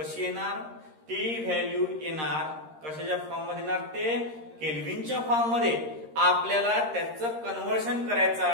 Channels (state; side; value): late; left; 13 ms